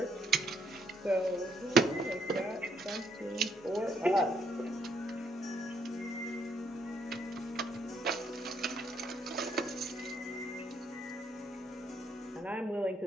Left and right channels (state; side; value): normal; both; correlation 0.72